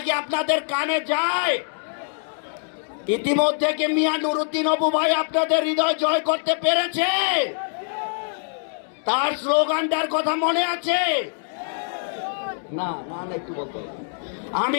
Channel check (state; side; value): silent; right; digital silence